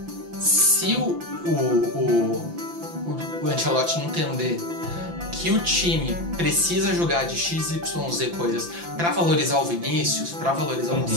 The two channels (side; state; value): left; late; 5.9 ms